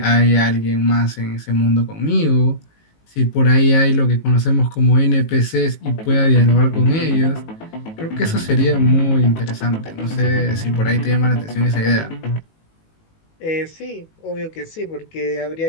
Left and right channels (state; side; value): late; right; 19 ms